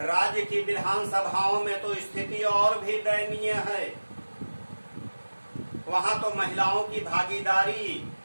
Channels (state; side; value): inverted; both; correlation -1.00